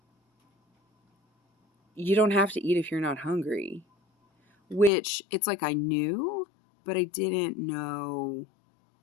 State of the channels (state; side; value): drops out; right; at 4.9 s